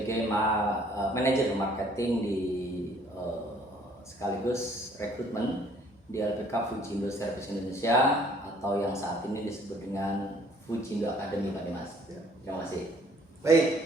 manajer marketing di sekaligus rekrutmen di LPK Fujindo Service Indonesia atau yang saat ini disebut dengan Fujindo Academy, Pak Dimas. Terima kasih.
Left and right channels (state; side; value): normal; both; correlation 0.59